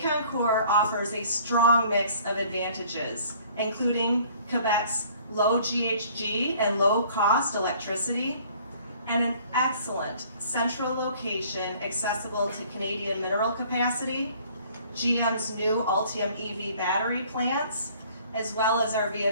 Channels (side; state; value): both; inverted; correlation -0.55